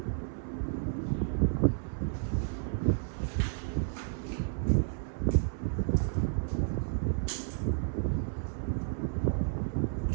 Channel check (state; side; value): silent; left; 56 dB below the other